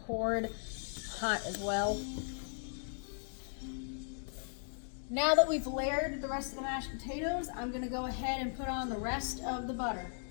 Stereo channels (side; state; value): right; silent; 53 dB below the other